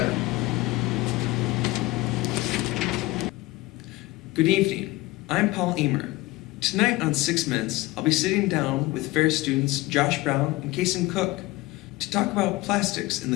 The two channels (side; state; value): right; quieter; 19.9 dB